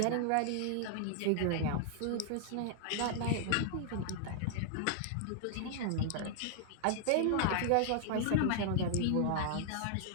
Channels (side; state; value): both; different; correlation -0.01